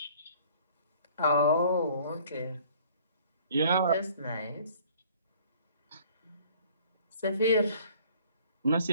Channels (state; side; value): inverted; both; correlation -0.54